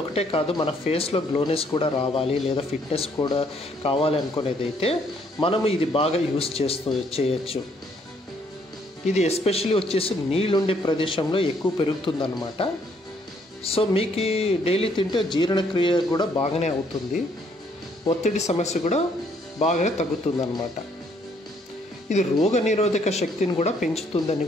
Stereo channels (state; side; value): normal; both; correlation 0.67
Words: కాదు, మన ఫేస్లో గ్లోనెస్ కూడా రావాలి లేదా ఫిట్నెస్ కూడా కావాలి అనుకునేదైతే మనము ఇది బాగా యూజ్ చేయొచ్చు. ఇది ఎస్పెషల్లీ వచ్చేసి నీళ్ళుండే ప్రదేశంలో ఎక్కువ పెరుగుతుందన్నమాట. సో మీకు డైలీ తింటే జీర్ణక్రియ కూడా బాగానే అవుతుంది, ఒత్తిడి సమస్య కూడా బాగానే తగ్గుతుందన్నమాట. ఇది రోగ నిరోధక శక్తిని కూడా పెంచుతుందని